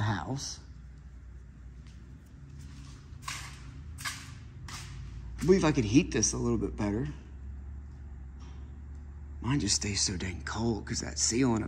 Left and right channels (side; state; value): both; identical; correlation 1.00